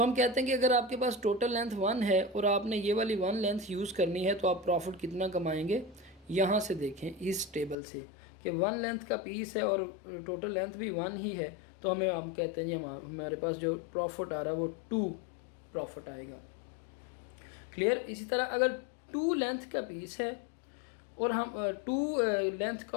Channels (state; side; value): drops out; right; at 7.8 s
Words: हम कहते हैं कि अगर आपके पास टोटल लेंथ 1 है और आपने ये वाली 1 लेंथ यूज़ करनी है तो आप प्रॉफिट कितना कमाएंगे। यहाँ से देखें इस टेबल से कि 1 लेंथ का पीस है और टोटल लेंथ भी 1 ही है, तो हम कहते हैं जी हमारे पास जो प्रॉफिट आ रहा है वो 2 प्रॉफिट आएगा। क्लियर। इसी तरह अगर 2 लेंथ का पीस है और हम 2 लेंथ